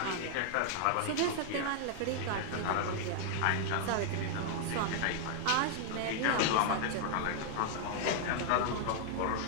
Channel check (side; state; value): both; different; correlation 0.00